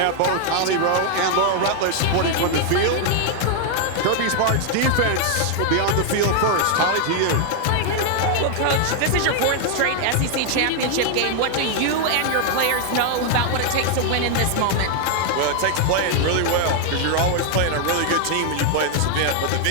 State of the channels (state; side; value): different; both; correlation 0.00